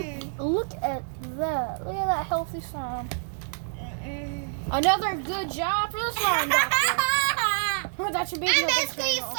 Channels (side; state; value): left; silent; digital silence